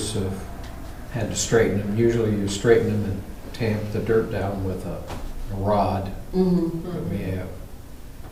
have had to straighten them. Usually you straighten them and tamp the dirt down with a rod mhm. that we have.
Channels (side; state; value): both; identical; correlation 1.00